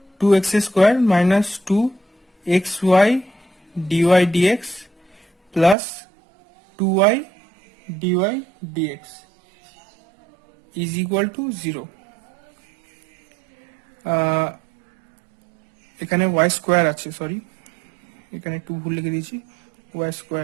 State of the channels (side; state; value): left; drops out; at 5.8 s